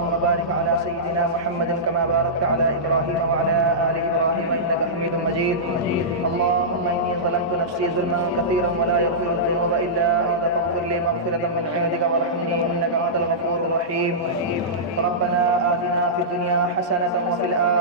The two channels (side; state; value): both; normal; correlation -0.16